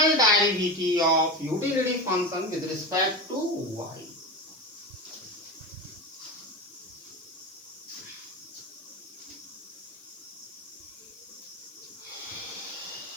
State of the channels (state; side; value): noise; left; hiss, 24 dB below the sound